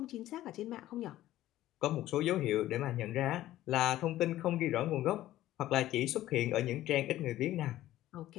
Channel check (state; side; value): quieter; right; 14.4 dB